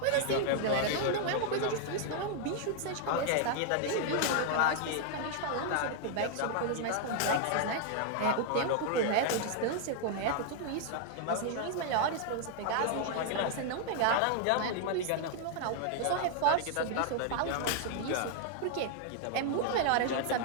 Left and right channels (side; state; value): both; different; correlation 0.00